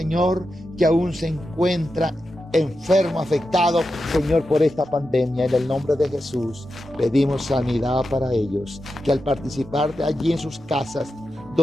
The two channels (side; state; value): both; normal; correlation 0.89